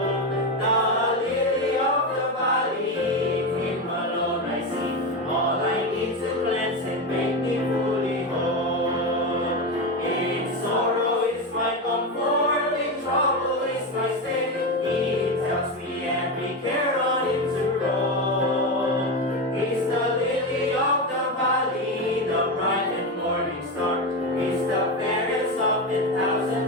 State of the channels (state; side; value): normal; both; correlation 0.15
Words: The lily of the valley, Him alone I see. All I need to cleanse and make me fully whole. In sorrow is my comfort, in trouble is my stay. He tells me every care on Him to roll. He's the lily of the valley, the bright and morning star. He's the fairest of the